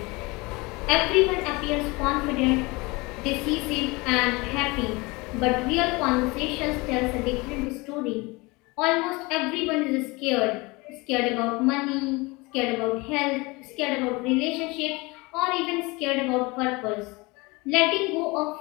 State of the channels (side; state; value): right; quieter; 24.7 dB